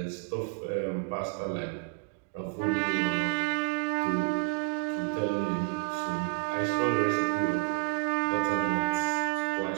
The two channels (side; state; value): left; quieter; 39.5 dB